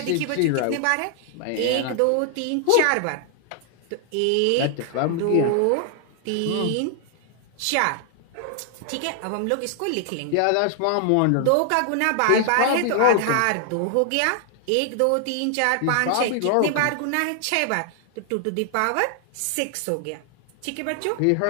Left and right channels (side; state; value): both; different; correlation 0.00